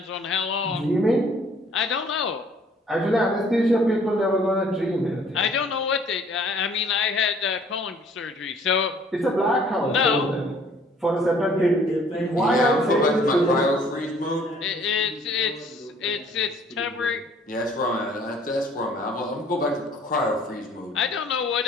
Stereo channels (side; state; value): both; normal; correlation 0.57